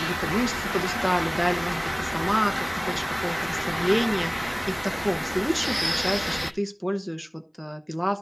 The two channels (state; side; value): identical; both; correlation 1.00